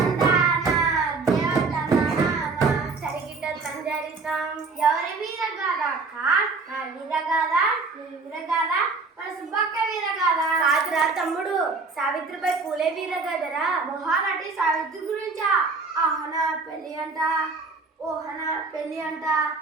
సరిగిట సంజరితం. ఎవరి వీరగాథ అక్క? నా వీరగాథ, నీ వీరగాథ, మన సుబ్బక్క వీరగాథ కాదురా తమ్ముడు, సావిత్రిబాయి పూలే వీరగాథరా. మహానటి సావిత్రి గురించా? ఆహనా పెళ్లి అంట, ఓహనా పెళ్లి అంట.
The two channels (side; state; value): left; quieter; 4.2 dB